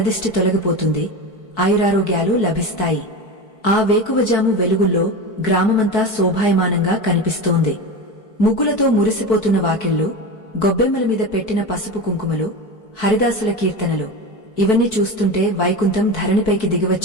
తొలగిపోతుంది, ఆయురారోగ్యాలు లభిస్తాయి. ఆ వేకువజాము వెలుగుల్లో గ్రామమంతా శోభాయమానంగా కనిపిస్తోంది. ముగ్గులతో మురిసిపోతున్న వాకిళ్లు, గొబ్బెమ్మల మీద పెట్టిన పసుపు కుంకుమలు, హరిదాసుల కీర్తనలు, ఇవన్నీ చూస్తుంటే వైకుంఠం ధరణిపైకి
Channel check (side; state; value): right; late; 4.6 ms